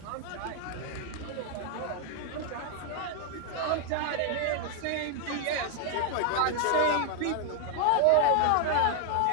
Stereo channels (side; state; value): both; different; correlation 0.00